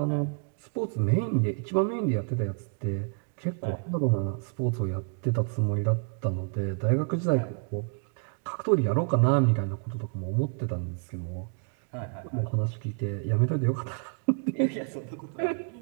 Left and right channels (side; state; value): left; quieter; 39.6 dB